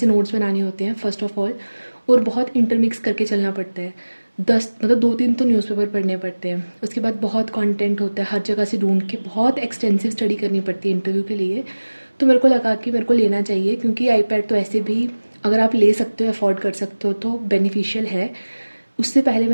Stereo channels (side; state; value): both; inverted; correlation -1.00